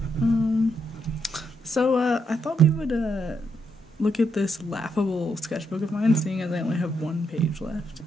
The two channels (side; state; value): both; normal; correlation 0.79